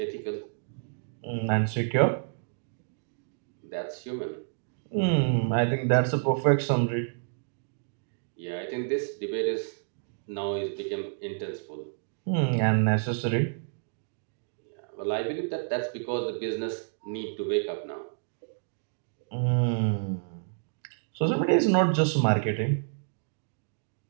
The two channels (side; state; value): left; silent; digital silence